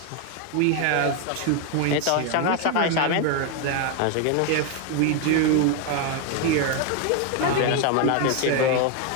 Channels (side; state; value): both; different; correlation 0.01